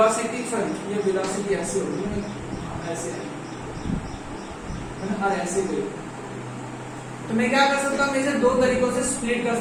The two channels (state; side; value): identical; both; correlation 1.00